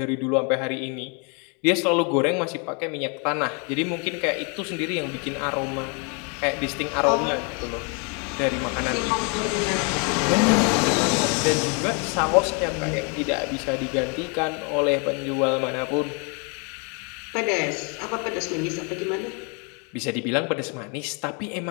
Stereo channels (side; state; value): right; quieter; 35.1 dB